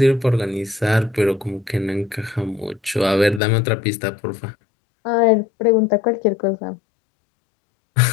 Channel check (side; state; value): right; drops out; at 3.4 s